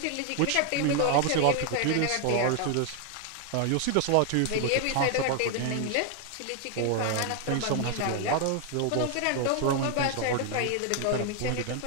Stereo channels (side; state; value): both; different; correlation 0.00